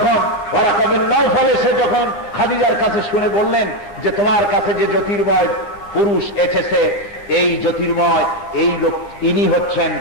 ওয়ারাকা বিন নাওফাল এসে যখন খাদিজার কাছে শুনে বললেন যে তোমার কাছে যে জ্যোতির্ময় পুরুষ এসেছে, এই জ্যোতির্ময় এই লোক, ইনি হচ্ছেন,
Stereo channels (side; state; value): right; late; 9.6 ms